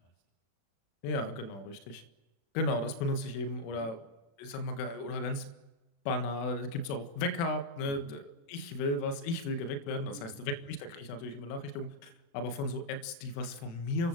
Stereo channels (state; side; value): late; right; 36 ms